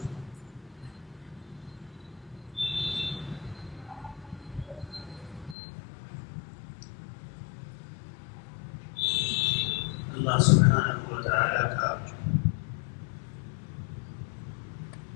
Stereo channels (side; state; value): right; drops out; at 5.6 s